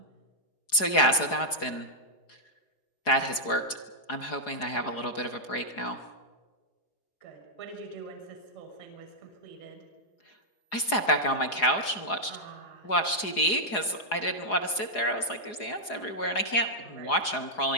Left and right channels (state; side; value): late; right; 4.8 ms